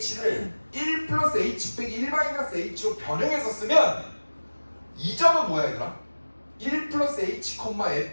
1 플러스 h 빼기 1 마이너스 h로 변형해서 쓰면 이 점은 뭐야, 얘들아? 1 플러스 h,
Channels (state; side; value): inverted; both; correlation -1.00